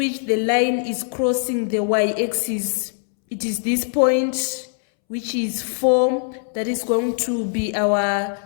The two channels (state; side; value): silent; right; 65 dB below the other